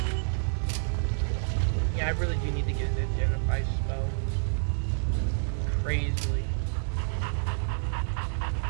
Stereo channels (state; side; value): silent; left; digital silence